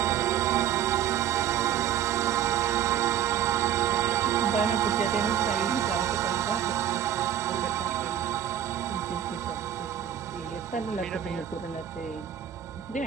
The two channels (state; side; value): quieter; left; 10.1 dB